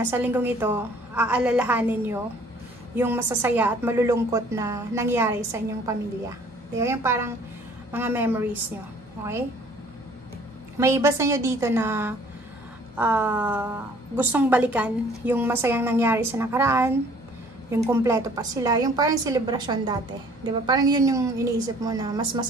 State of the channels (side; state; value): both; normal; correlation 0.55